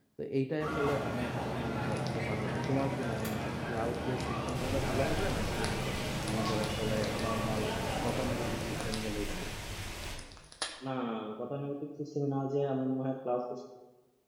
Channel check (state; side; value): identical; both; correlation 1.00